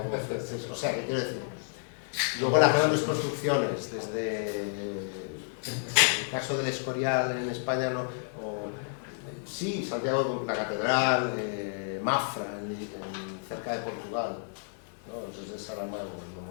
O sea, ¿qué quiero decir? Luego las grandes construcciones, desde el caso del Escorial en España, sí, Santiago, la catedral, Mafra, cerca de Portugal, ¿no? Desde Saramago, el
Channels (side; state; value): right; silent; 57 dB below the other